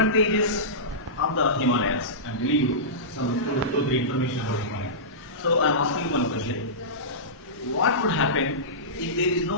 of the Himalayas. I'm telling you some two, three information about Himalayas. So I'm asking you one question: what would happen if there is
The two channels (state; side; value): normal; both; correlation -0.18